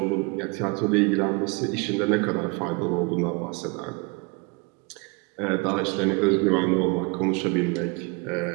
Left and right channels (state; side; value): quieter; left; 28.9 dB